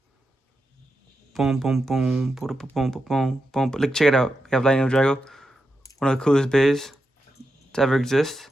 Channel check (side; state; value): both; normal; correlation 0.87